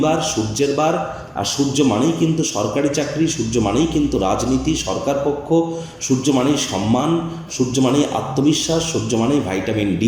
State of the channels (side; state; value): both; identical; correlation 1.00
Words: সূর্যের বার, আর সূর্য মানেই কিন্তু সরকারি চাকরি, সূর্য মানেই কিন্তু রাজনীতি, সরকার পক্ষ, সূর্য মানেই সম্মান, সূর্য মানেই আত্মবিশ্বাস, সূর্য মানেই ভিটামিন